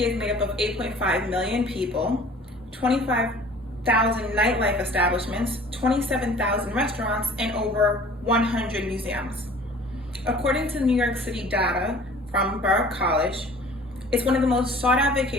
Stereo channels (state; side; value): normal; both; correlation 0.48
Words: is made up of 8.5 million people, 25,000 nightlife establishments, 27,000 restaurants, and over 100 museums. According to New York City data from Borough College, it's one of the most sought out